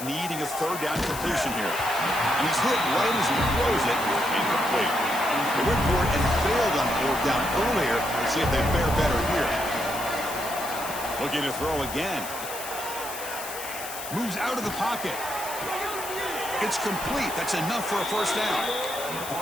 needing a 3rd down completion here. He's hit right as he throws it. Incomplete. They went for it and failed on 4th down earlier. Let's see if they fare better here. Looking to throw again. Moves out of the pocket. It's complete. That's enough for a 1st down.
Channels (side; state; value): left; noise; hiss, 9 dB below the sound